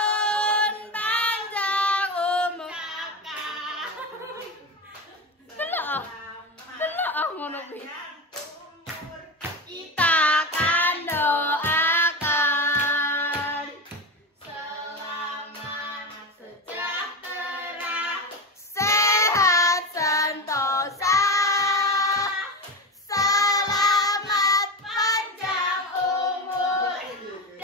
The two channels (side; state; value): both; normal; correlation 0.20